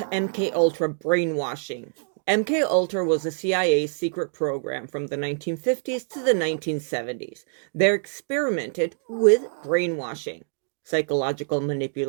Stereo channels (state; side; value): silent; left; digital silence